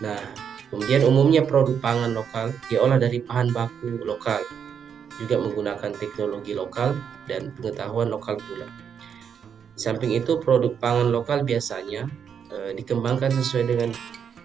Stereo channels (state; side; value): quieter; left; 7.5 dB